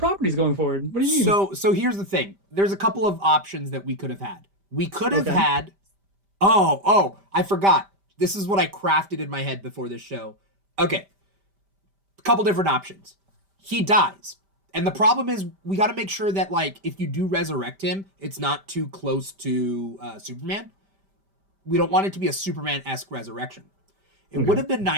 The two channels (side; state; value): left; late; 5.1 ms